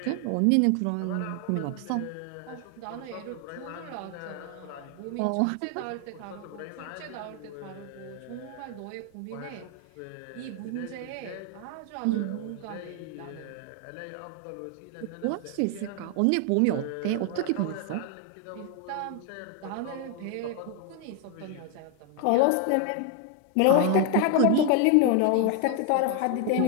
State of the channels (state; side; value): different; both; correlation 0.01